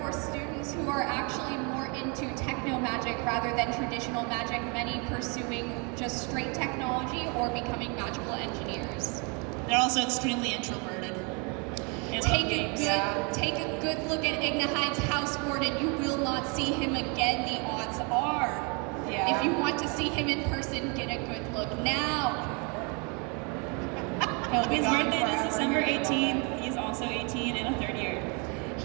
for students who are actually more into techno magic rather than traditional magic, many pursuing just straight technology or becoming magical engineers. They're also extremely introverted. Take a good look at Igna Hyde's house warden. You will not see him again, the odds are. Yeah. If you want to see him in person, get a good look now. He'll be His gone birthday is forever. December 18th. He's also 18 in a third year.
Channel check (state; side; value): quieter; left; 33.1 dB